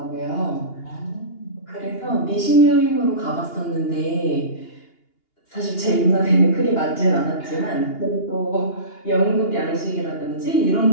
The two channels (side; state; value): right; late; 2.8 ms